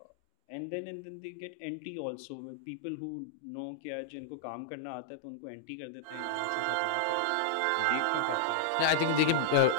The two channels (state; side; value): different; both; correlation -0.01